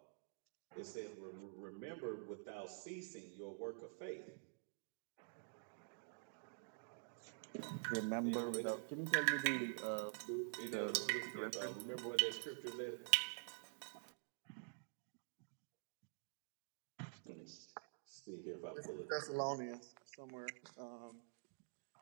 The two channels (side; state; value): left; silent; digital silence